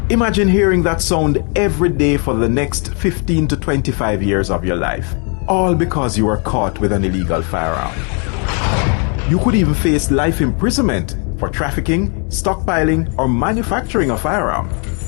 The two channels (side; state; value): right; quieter; 38.4 dB